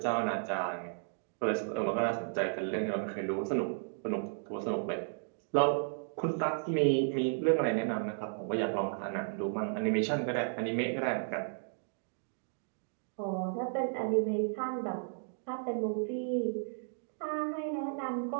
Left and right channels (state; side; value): silent; left; digital silence